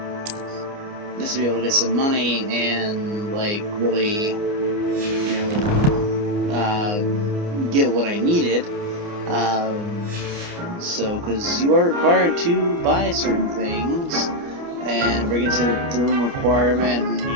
just to be able to get some money and, like, really, you know, get what I needed. Because you are required to buy certain things and bring it to the room requirement and,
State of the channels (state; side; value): late; left; 29 ms